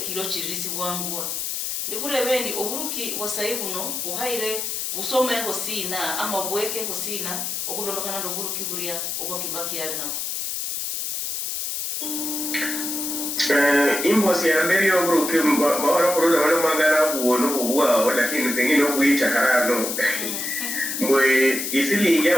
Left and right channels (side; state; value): left; noise; hiss, 3 dB below the sound